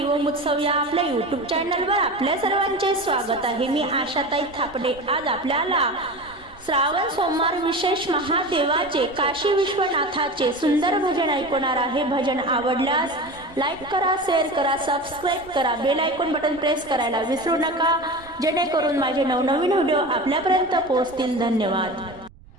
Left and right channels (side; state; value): right; noise; rumble, 23 dB below the sound